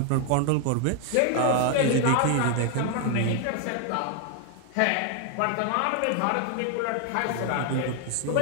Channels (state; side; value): different; both; correlation 0.00